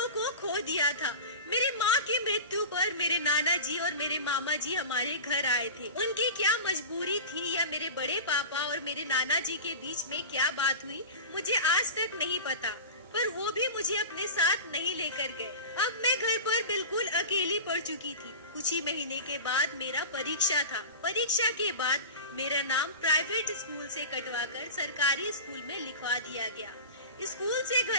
को खो दिया था। मेरी माँ की मृत्यु पर मेरे नाना जी और मेरे मामा जी हमारे घर आए थे। उनकी क्या मजबूरी थी या मेरे बड़े पापा और मेरे नाना जी के बीच में क्या बात हुई, मुझे आज तक नहीं पता, पर वो भी मुझे अपने साथ नहीं लेकर गए। अब मैं घर पर बिल्कुल अकेली पड़ चुकी थी। कुछ ही महीने के बाद मेरा परीक्षा था। परीक्षा के बाद मेरा नाम प्राइवेट स्कूल से कटवाकर सरकारी स्कूल में लिखवा दिया गया। स्कूल से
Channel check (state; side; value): inverted; both; correlation -0.31